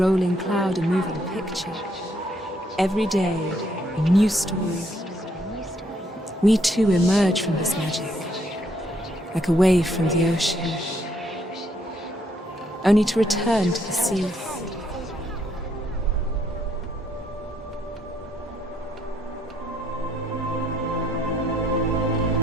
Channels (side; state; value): both; normal; correlation 0.71